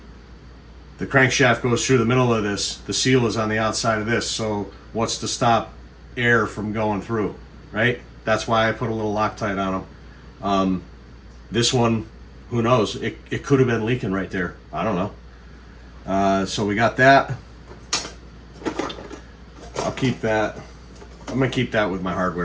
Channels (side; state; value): both; identical; correlation 1.00